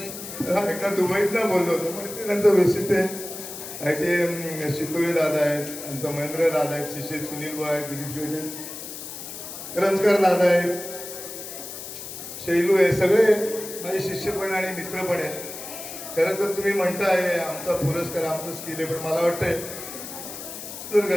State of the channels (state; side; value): noise; left; hiss, 10 dB below the sound